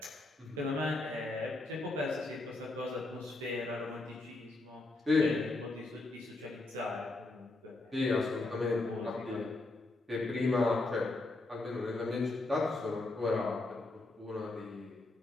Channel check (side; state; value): right; quieter; 3.0 dB